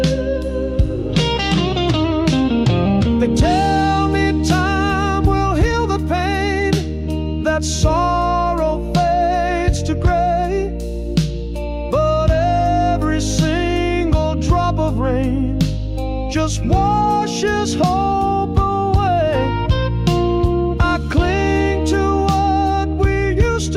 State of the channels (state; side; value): identical; both; correlation 1.00